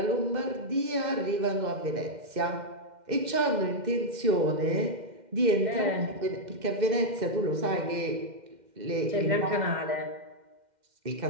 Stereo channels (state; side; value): late; left; 2.1 ms